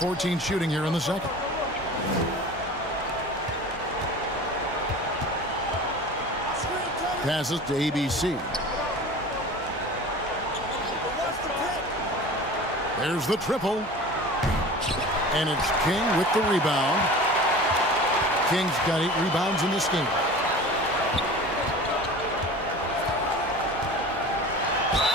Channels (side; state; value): both; normal; correlation 0.38